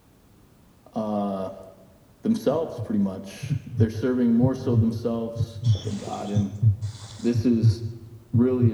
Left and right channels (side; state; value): both; identical; correlation 1.00